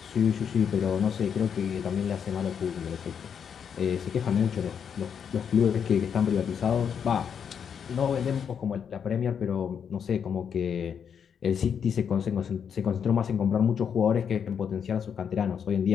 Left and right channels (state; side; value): quieter; right; 7.5 dB